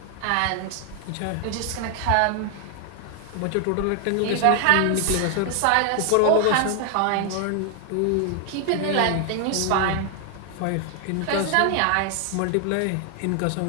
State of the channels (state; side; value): different; both; correlation 0.00